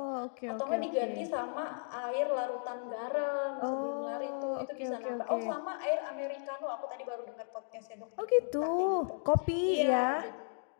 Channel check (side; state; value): right; silent; digital silence